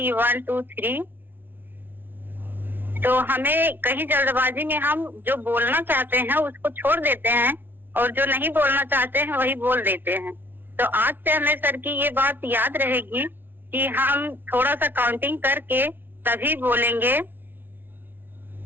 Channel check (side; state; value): left; late; 0.099 ms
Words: 1 2 3, तो हमें कहीं जल्दबाजी में हम जो बोलना चाहते हैं उसको छोड़ देते हैं और जो नहीं बोलना चाहते हैं वही बोल देते हैं। तो आज से हमें सर की ये बात याद रहेगी कि हम थोड़ा सा काउंटिंग करके तभी बोलेंगे,